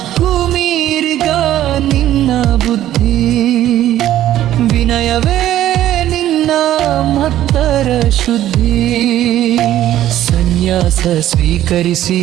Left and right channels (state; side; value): quieter; left; 12.8 dB